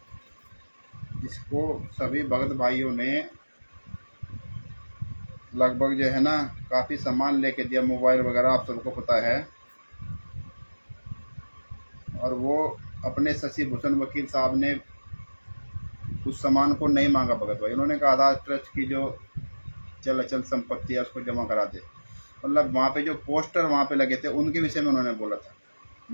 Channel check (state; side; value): inverted; both; correlation -1.00